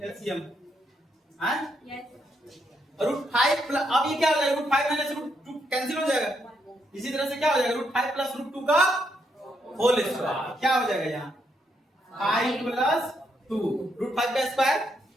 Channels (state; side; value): normal; both; correlation 0.77